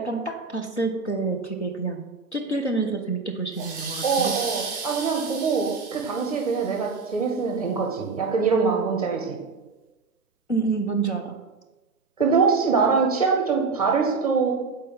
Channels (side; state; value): left; quieter; 4.6 dB